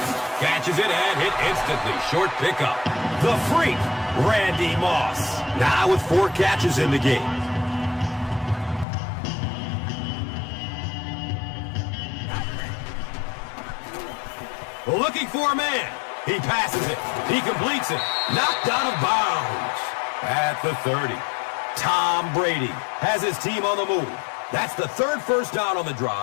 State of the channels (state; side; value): drops out; right; at 8.8 s